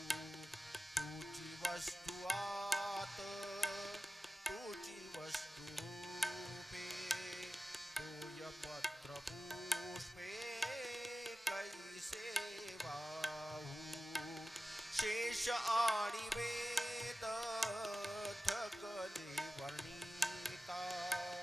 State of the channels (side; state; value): both; normal; correlation 0.95